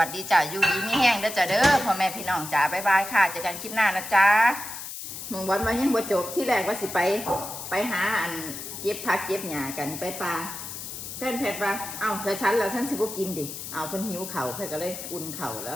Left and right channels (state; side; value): noise; left; hiss, 9 dB below the sound